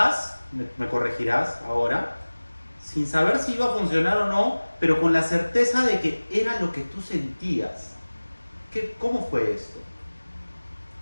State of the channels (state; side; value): inverted; both; correlation -1.00